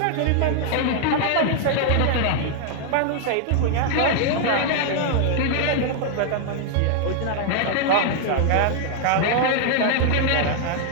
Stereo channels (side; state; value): both; different; correlation 0.00